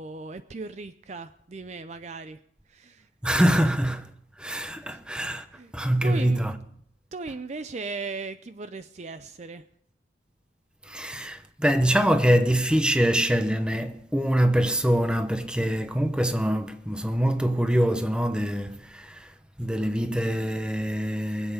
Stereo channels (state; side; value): normal; both; correlation 0.89